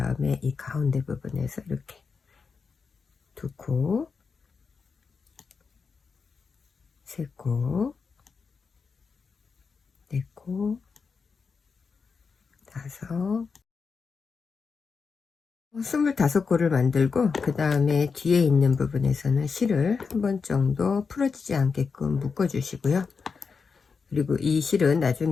이 가운데 부분에서 이렇게 2코, 3코, 4코, 5, 25코를 만들고, 그 다음에 뒤에 있는 부분에서는 실을 한 번 정도 풀어지지 않게끔 묶어 주시고요. 그리고 이 실은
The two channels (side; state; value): right; quieter; 5.2 dB